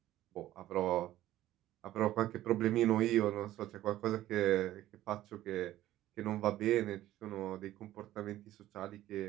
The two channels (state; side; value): quieter; left; 14.2 dB